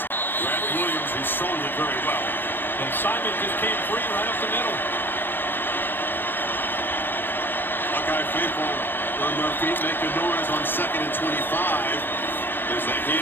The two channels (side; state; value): right; late; 0.098 ms